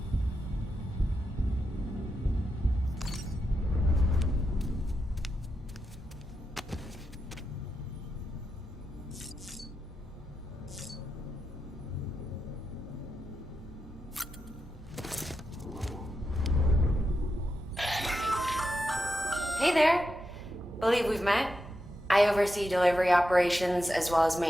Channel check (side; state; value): both; normal; correlation 0.87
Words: Hey there. Believe we've met. I oversee delivery operations as well as